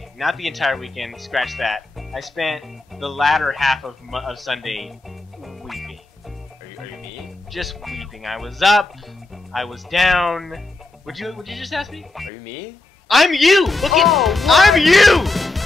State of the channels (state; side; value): quieter; right; 3.0 dB